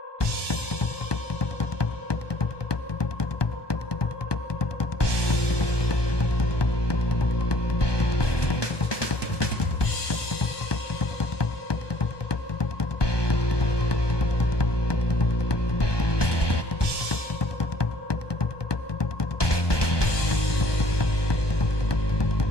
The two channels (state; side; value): late; right; 1.2 ms